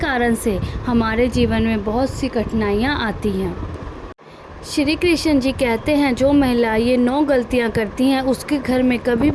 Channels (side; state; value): both; identical; correlation 1.00